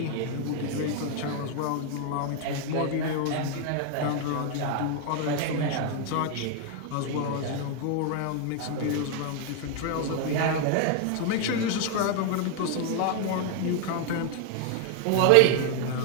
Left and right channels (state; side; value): different; both; correlation 0.01